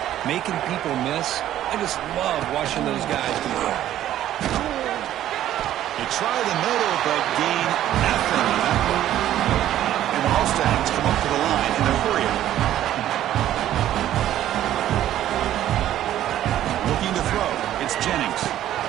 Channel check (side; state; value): left; quieter; 12.4 dB